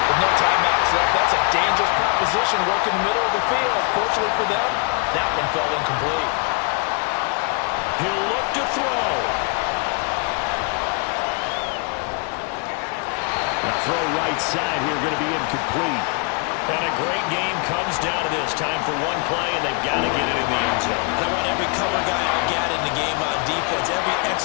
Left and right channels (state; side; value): quieter; right; 34.6 dB